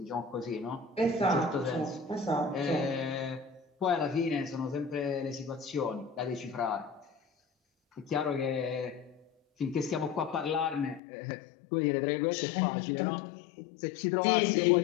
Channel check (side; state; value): right; drops out; at 11.0 s